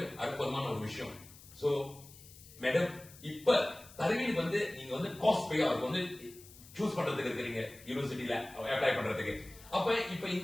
அற்புதமான ஒரு விஷயம். சோ மேடம், இப்ப தருவீனுக்கு வந்து நீங்க வந்து காஸ்ட் பே அவருக்கு வந்து சூஸ் பண்றதுக்கு இருக்கிறீங்க யூனிவர்சிட்டியில அப்ளை பண்றதுக்கு. அப்ப இப்ப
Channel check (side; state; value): left; noise; hiss, 20 dB below the sound